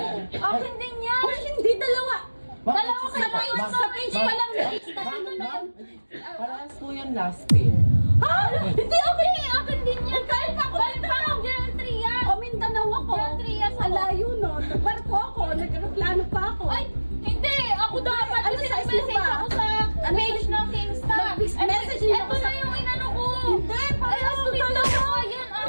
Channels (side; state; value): both; inverted; correlation -1.00